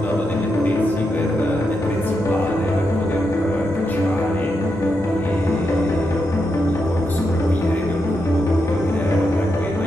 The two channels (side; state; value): both; normal; correlation 0.84